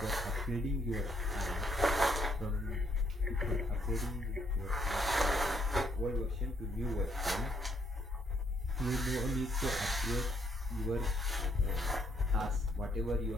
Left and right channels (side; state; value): both; normal; correlation 0.71